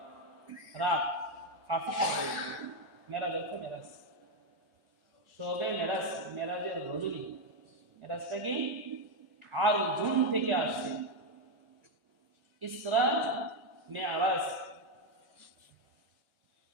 রাত, কাফি শব্দ, মেরাজ অর্থ মেরাজ, সবে মেরাজ, মেরাজের রজনী। মেরাজটা কি আর জুন থেকে আসছে, ইসরা মেরাজ।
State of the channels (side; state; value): both; normal; correlation 0.04